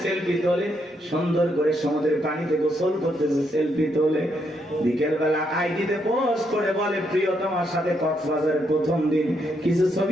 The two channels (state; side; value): normal; both; correlation 0.77